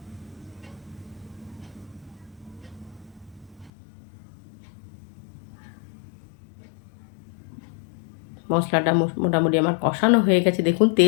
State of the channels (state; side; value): drops out; right; at 3.7 s